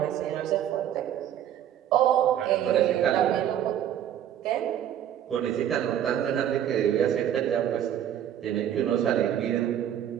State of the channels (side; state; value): left; quieter; 10.5 dB